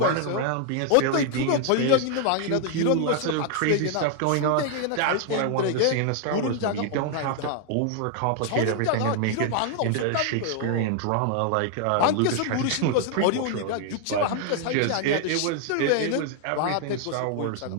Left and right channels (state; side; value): different; both; correlation 0.00